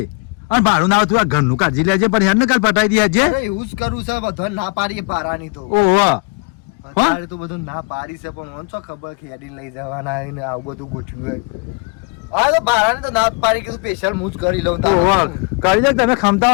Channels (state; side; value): quieter; right; 30.9 dB